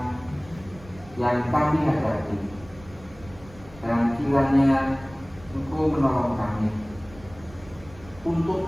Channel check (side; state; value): right; noise; rumble, 20 dB below the sound